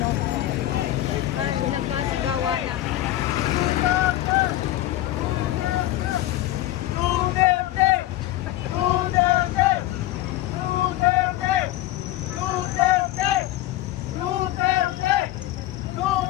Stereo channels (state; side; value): quieter; right; 15.1 dB